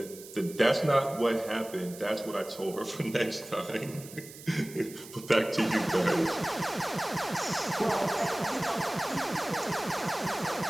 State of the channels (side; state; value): right; noise; hiss, 16 dB below the sound